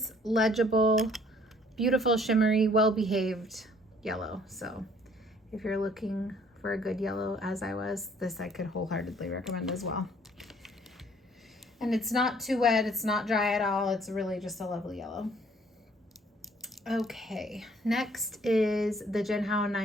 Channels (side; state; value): both; normal; correlation 0.59